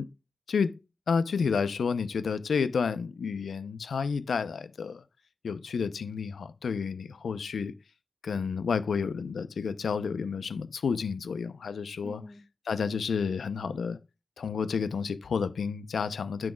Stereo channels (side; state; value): right; quieter; 5.4 dB